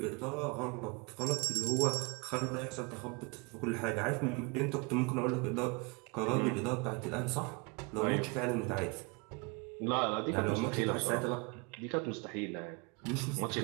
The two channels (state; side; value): quieter; left; 29.6 dB